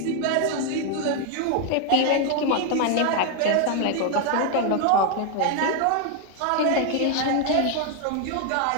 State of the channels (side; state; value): both; different; correlation 0.01